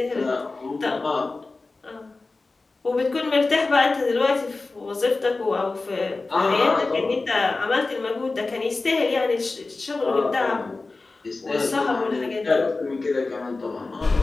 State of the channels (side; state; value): right; quieter; 3.6 dB